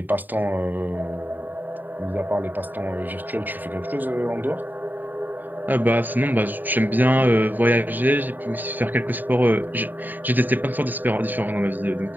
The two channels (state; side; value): late; left; 0.089 ms